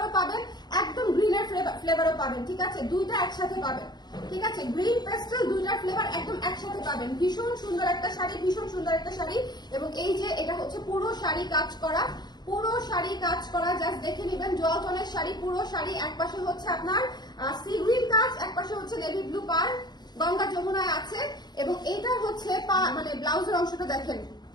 পাবেন, একদম গ্রিনের ফ্লেভারও পাবেন, ঠিক আছে? দুইটা একসাথে পাবেন, ঠিক আছে? গ্রিন পেস্টাল দুইটার ফ্লেভার একদম একসাথে পাবেন। ভীষণ সুন্দর একটা শাড়ি, এবং এই যে এটা হচ্ছে পুরো শাড়ি কাজ করা, জাস্ট দেখে নেবেন। ডুয়ালটনের শাড়ি, পুরো শাড়ি, এক পাশে হচ্ছে আপনার সি গ্রিন কাজ, এক পাশে হচ্ছে নেভি ব্লু পার, গঙ্গা যমুনায় আছে। এবং এইটা হচ্ছে মানে ব্লাউজের অংশটা দেখেন,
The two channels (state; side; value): late; right; 0.20 ms